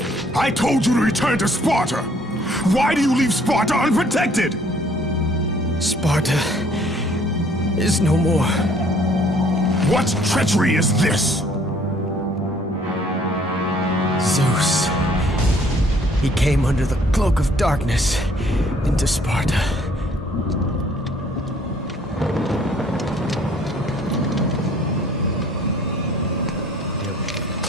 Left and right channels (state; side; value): normal; both; correlation 0.60